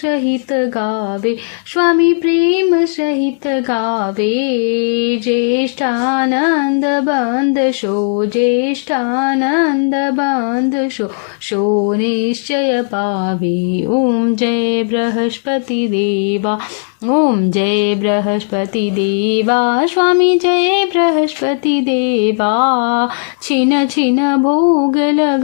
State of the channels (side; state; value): right; silent; digital silence